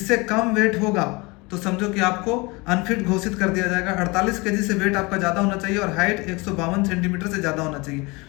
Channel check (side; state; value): right; quieter; 25.5 dB